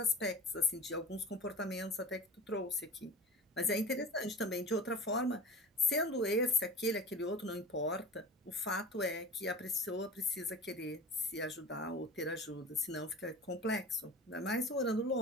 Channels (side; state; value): both; normal; correlation 0.34